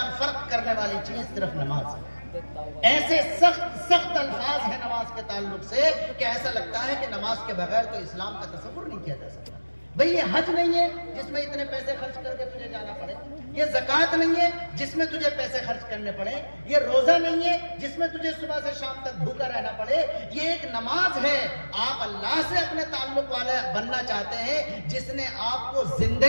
فرق کرنے والی چیز صرف نماز ہے. ایسے سخت الفاظ ہیں نماز کے تعلق سے کہ ایسا لگتا ہے کہ نماز کے بغیر تو اسلام کا تصور نہیں کیا جا سکتا. بھئی یہ حج نہیں ہے جس میں اتنے پیسے خرچ کر کے تجھے جانا پڑے، یہ زکوٰۃ نہیں ہے جس میں تجھے پیسے خرچ کرنے پڑے، یہ روزہ نہیں ہے جس میں تجھے صبح سے شام تک بھوکا رہنا پڑے. یہ ایک نماز ہے. آپ اللہ سے اپنے تعلق والے بننا چاہتے ہیں جس نے آپ کو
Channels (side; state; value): both; inverted; correlation -1.00